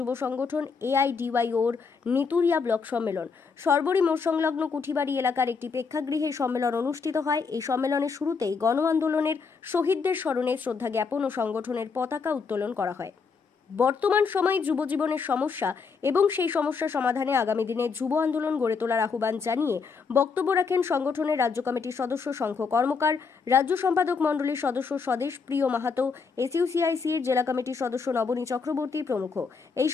সংগঠন AIDYOর নেতুরিয়া ব্লক সম্মেলন। সরবরি মোড় সংলগ্ন কুঠিবাড়ি এলাকার একটি প্রেক্ষাগৃহে সম্মেলন অনুষ্ঠিত হয়। এই সম্মেলনের শুরুতেই গণ আন্দোলনের শহীদদের স্মরণে শ্রদ্ধা জ্ঞাপন ও সংগঠনের পতাকা উত্তোলন করা হয়। বর্তমান সময়ে যুব জীবনের সমস্যা এবং সেই সমস্যা সমাধানে আগামী দিনে যুব আন্দোলন গড়ে তোলার আহ্বান জানিয়ে বক্তব্য রাখেন সংগঠনের রাজ্য কমিটির সদস্য শঙ্খ কর্মকার, রাজ্য সম্পাদক মণ্ডলীর সদস্য স্বদেশ প্রিয় মাহাতো, SUCIC এর জেলা কমিটির সদস্য নবনী চক্রবর্তী প্রমুখ। এই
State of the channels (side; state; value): right; quieter; 5.2 dB